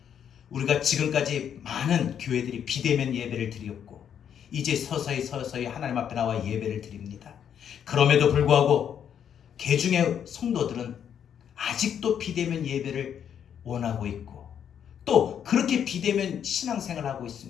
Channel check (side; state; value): right; quieter; 8.7 dB